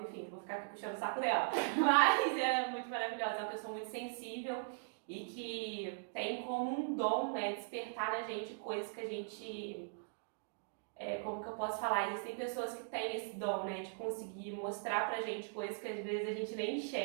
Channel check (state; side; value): silent; left; digital silence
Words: enfim, vou ficar aqui puxando o saco dela, mas ela é muito maravilhosa, é uma pessoa muito sensível e que tem como um dom, né, despertar na gente coisas que a gente... como que eu posso falar? Existem pessoas que têm esse dom, né, de conseguir mostrar pra gente coisas que às vezes a gente nem